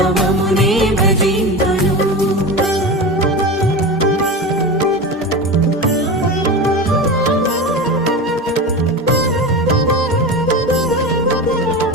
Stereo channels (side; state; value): both; normal; correlation 0.26